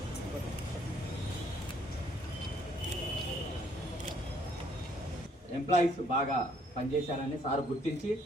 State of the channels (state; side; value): normal; both; correlation 0.65